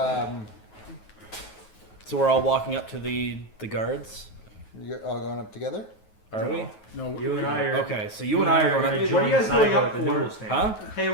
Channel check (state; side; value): late; right; 9.3 ms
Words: So we're all walking up to the guards. you're all going up together? Are we? No, You and I are. Okay, so you and I are going Hey, up. what are you guys going up the for? noodle stand. Huh? Hey,